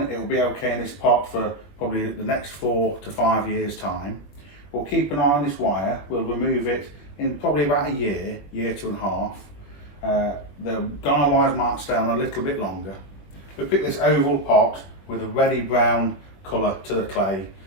It will be okay in this pot for probably the next 4 to 5 years time. We'll keep an eye on this wire. We'll remove it in probably about a year, 1.5 years. The guy wires might stay on a little bit longer. We picked this oval pot with a reddy brown colour to the clay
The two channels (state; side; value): late; right; 21 ms